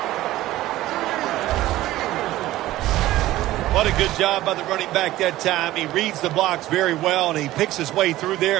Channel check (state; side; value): quieter; left; 15.9 dB